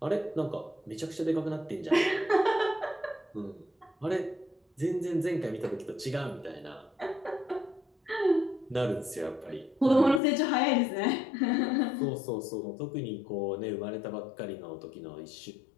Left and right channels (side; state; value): right; drops out; at 10.2 s